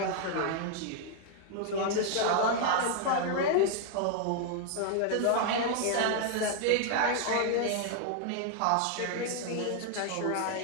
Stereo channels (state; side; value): different; both; correlation 0.00